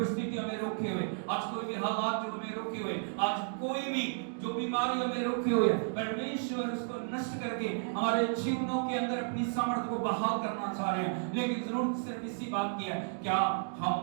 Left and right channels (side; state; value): left; silent; digital silence